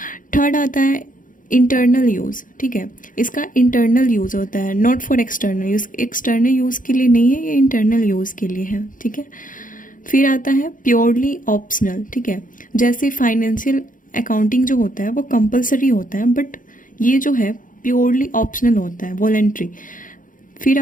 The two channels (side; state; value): right; late; 0.39 ms